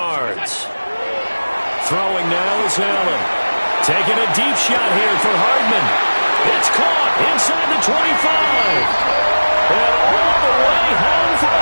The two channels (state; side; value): inverted; both; correlation -1.00